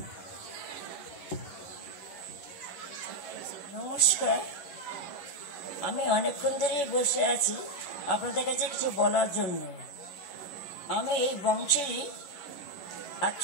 নমস্কার, আমি অনেকক্ষণ ধরেই বসে আছি আপনাদের কাছে কিছু বলার জন্য। আমি এই বংশেরই এক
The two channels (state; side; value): late; right; 11 ms